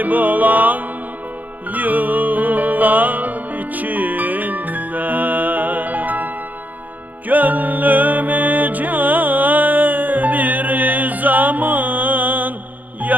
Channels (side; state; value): left; late; 0.081 ms